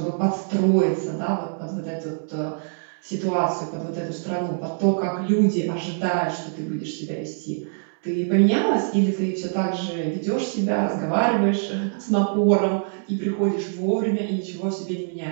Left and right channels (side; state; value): left; silent; 63 dB below the other